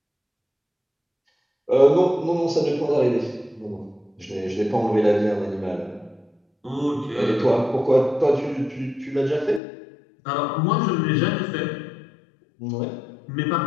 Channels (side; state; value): right; drops out; at 9.6 s